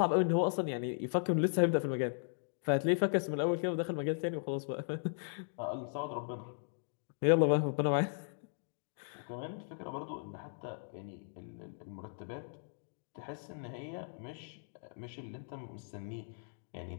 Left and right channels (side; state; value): right; silent; digital silence